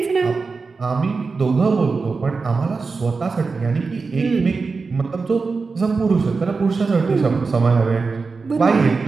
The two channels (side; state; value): left; quieter; 4.4 dB